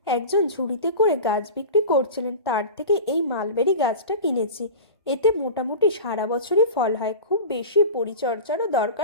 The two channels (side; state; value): both; inverted; correlation -0.33